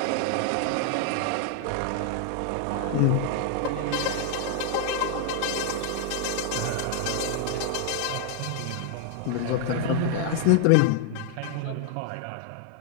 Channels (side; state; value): both; different; correlation 0.00